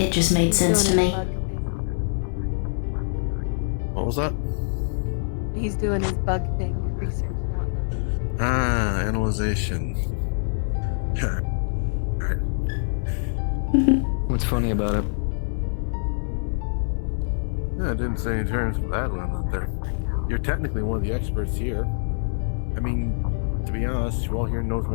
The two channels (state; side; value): silent; right; 62 dB below the other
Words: just made sense to me. What was that? He's doing his bug thing, research now. Ah, analyzation. What's funny about it? Yeah, I didn't say any terms of that one out there. You're technically one of the experts here. I mean, to be honest, who all here knows